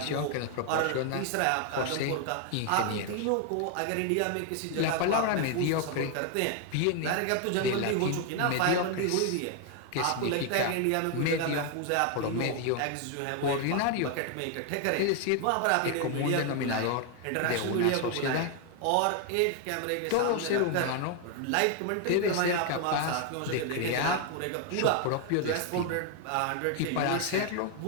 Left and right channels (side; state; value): both; different; correlation 0.01